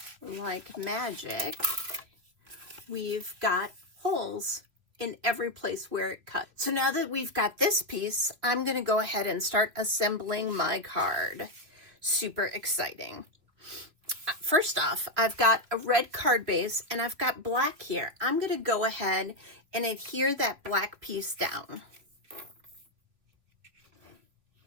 like magic, we've got holes in every place where it cut. So now that we've got this piece, I'm going to go ahead and start assembling my card. Super exciting. First off, I've got a red card base and I've got black here. I'm going to go ahead and adhere that black piece down.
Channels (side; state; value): left; late; 2.9 ms